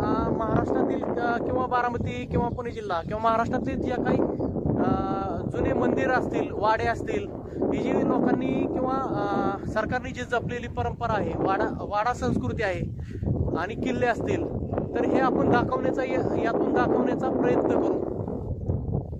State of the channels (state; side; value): identical; both; correlation 1.00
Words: महाराष्ट्रातील किंवा बारामती किंवा पुणे जिल्हा किंवा महाराष्ट्रातील ज्या काही जुने मंदिर असतील, वाडे असतील, ही जी लोकांनी किंवा सरकारने जी जपलेली परंपरा आहे, वाडा संस्कृती आहे आणि किल्ले असतील, तर हे आपण यातून दाखवण्याचा प्रयत्न करू.